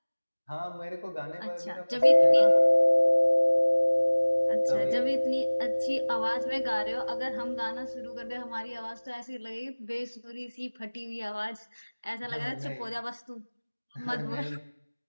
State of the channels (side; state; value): both; inverted; correlation -1.00